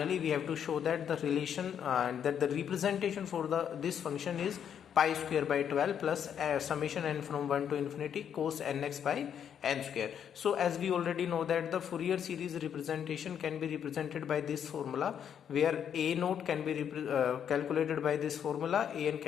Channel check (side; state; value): right; quieter; 8.6 dB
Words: we have to show that the relation that the representation for this function is pi square by 12 plus summation n from 1 to infinity cos nx by n square. So as we already know that the Fourier series representation can be represented by this formula, where a naught can be calculated by this formula, an